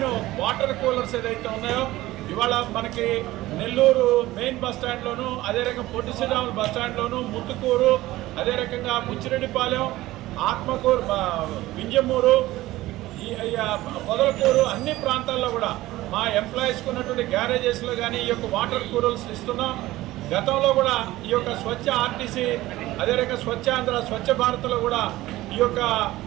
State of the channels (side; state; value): left; quieter; 17.1 dB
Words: వాటర్ కూలర్స్ ఏదైతే ఉన్నాయో ఇవాళ మనకి నెల్లూరు మెయిన్ బస్ స్టాండ్లోను, అదే రకంగా పొట్టి శ్రీరాములు బస్ స్టాండ్లోను, ముత్తుకూరు, అదే రకంగా ముచ్చిరెడ్డిపాలెం, ఆత్మకూరు, వింజమూరు, పొదలకూరు అన్ని ప్రాంతాల్లో కూడా మా ఎంప్లాయీస్కి ఉన్నటువంటి గ్యారేజెస్లో కానీ ఈ యొక్క వాటర్ కూలర్స్ ఇస్తున్నాం. గతంలో కూడా ఈ యొక్క స్వచ్ఛ ఆర్టీసీ, అదే రకంగా స్వచ్ఛ ఆంధ్ర, స్వచ్ఛ భారత్లో కూడా ఈ యొక్క